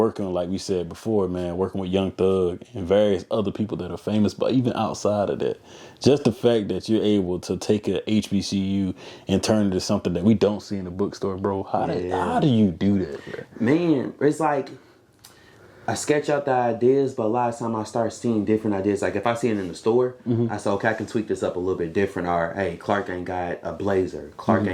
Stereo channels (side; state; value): both; identical; correlation 1.00